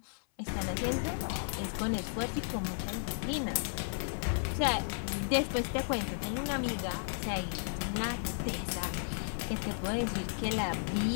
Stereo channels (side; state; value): right; silent; 55 dB below the other